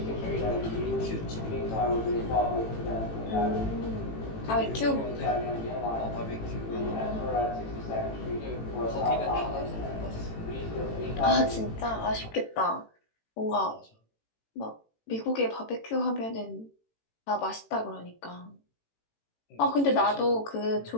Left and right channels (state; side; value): late; right; 18 ms